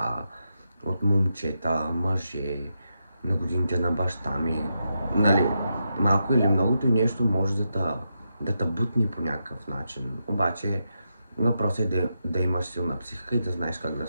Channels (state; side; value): inverted; both; correlation -0.85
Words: от момчета, мъже, на годините на баща ми. Нали, малко или многото нещо може да те бутни по някакъв начин. Обаче въпросът е да имаш силна психика и да знаеш как да